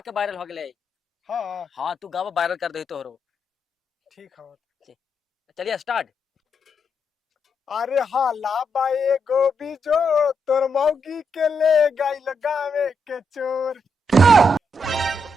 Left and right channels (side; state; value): both; normal; correlation 0.81